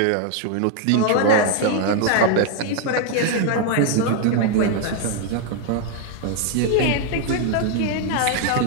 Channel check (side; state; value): both; different; correlation 0.00